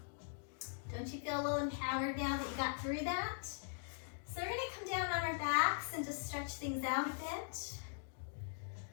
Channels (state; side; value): silent; right; digital silence